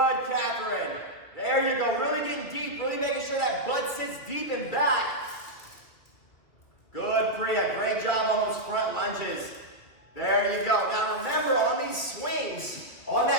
Catherine. There you go. Really getting deep. Really making sure that butt sits deep and back. Good, Priya. Great job on those front lunges. There you go. Now remember, on these swings, on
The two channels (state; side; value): late; right; 2.6 ms